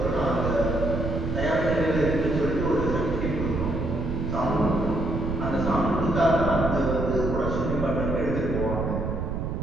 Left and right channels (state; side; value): noise; right; rumble, 3 dB below the sound